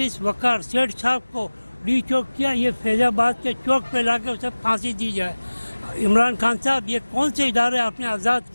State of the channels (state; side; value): inverted; both; correlation -1.00